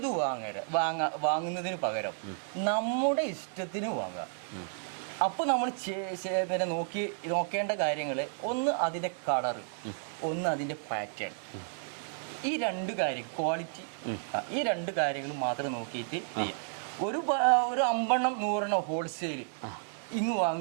വാങ്ങുന്നതിന് പകരം നമ്മുടെ ഇഷ്ടത്തിന് വാങ്ങുക. അപ്പോൾ നമ്മൾ പിന്നെ നോക്കേണ്ട കാര്യങ്ങൾ, ഒന്ന് അതിൻ്റെ കളറ്, ഒന്ന് അതിൻ്റെ പാറ്റേൺ. ഈ 2 കാര്യം, ക്വാളിറ്റി, ഈ 2 കാര്യങ്ങൾ മാത്രം നോക്കിയിട്ട് ചെയ്യാം. ഒരു 50-100 ഹോൾസെയിൽ ഇങ്ങ്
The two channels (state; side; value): silent; left; digital silence